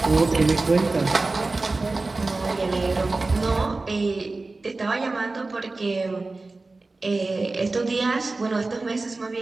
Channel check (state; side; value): quieter; left; 3.4 dB